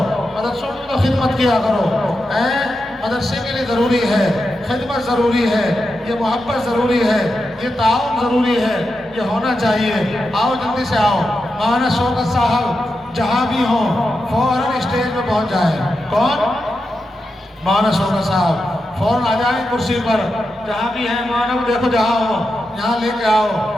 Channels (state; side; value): normal; both; correlation 0.88